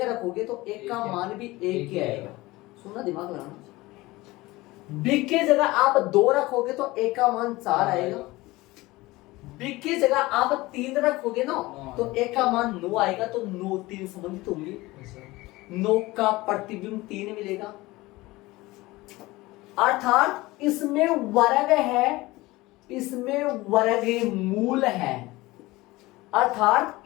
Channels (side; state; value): right; quieter; 20.1 dB